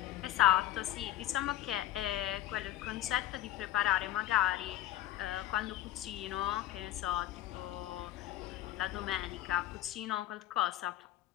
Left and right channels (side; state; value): right; quieter; 13.6 dB